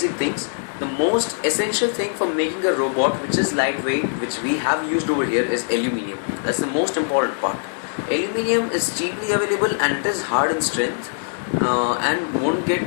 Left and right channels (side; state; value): right; silent; digital silence